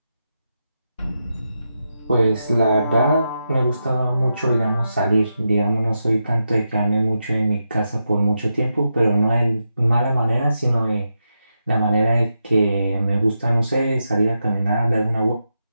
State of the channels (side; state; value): both; inverted; correlation -0.87